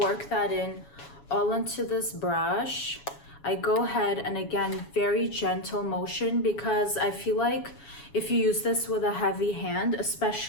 that in all into this brush, I go ahead and, again, very gentle motion, because I feel like if you use this with a heavy hand,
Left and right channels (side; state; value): right; late; 7.1 ms